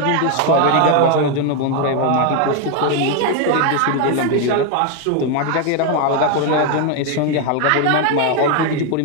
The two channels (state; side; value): different; both; correlation 0.01